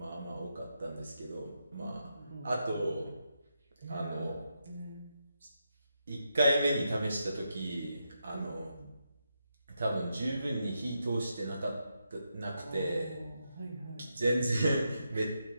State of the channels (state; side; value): inverted; both; correlation -0.84